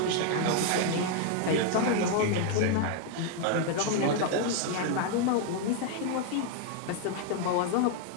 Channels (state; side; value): different; both; correlation 0.00